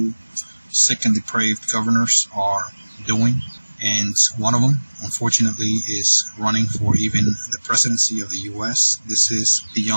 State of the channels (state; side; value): inverted; both; correlation -1.00